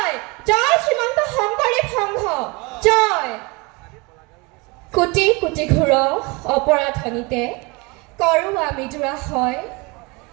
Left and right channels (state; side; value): quieter; left; 26.6 dB